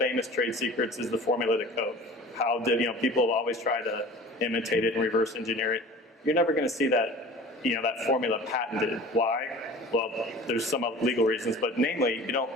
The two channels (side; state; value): both; normal; correlation 0.42